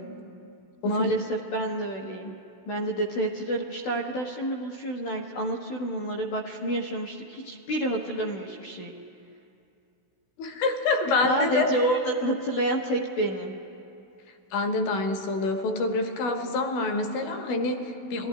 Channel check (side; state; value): right; late; 16 ms